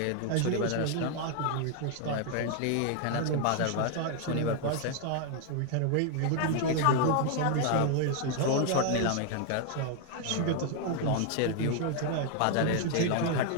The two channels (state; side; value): different; both; correlation 0.00